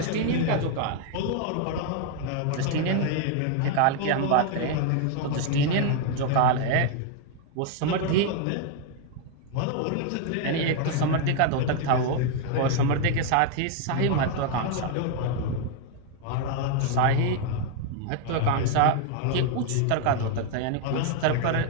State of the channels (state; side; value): different; both; correlation 0.00